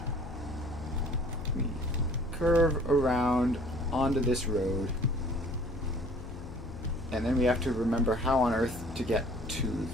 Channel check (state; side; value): noise; left; hum, 12 dB below the sound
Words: We curve around onto this road. And then we have to remember how on earth to get to